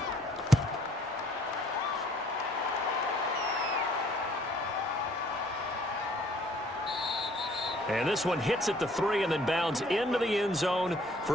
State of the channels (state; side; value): normal; both; correlation 0.60